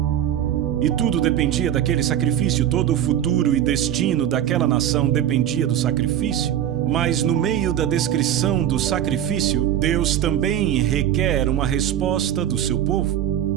E tudo dependia daquele sacrifício, todo o futuro e destino daquela nação dependia do sacrifício. Mas no meio da descrição do sacrifício, Deus também requer uma resposta do seu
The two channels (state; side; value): quieter; left; 10.8 dB